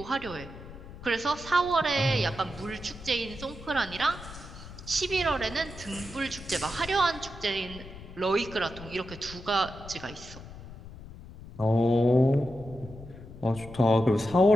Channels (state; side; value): noise; left; rumble, 15 dB below the sound